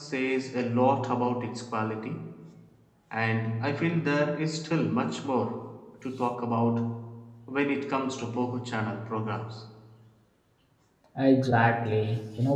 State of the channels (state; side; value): identical; both; correlation 1.00